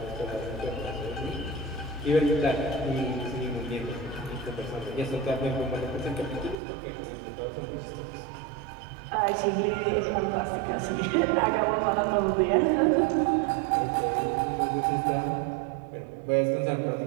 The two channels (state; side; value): drops out; left; at 6.6 s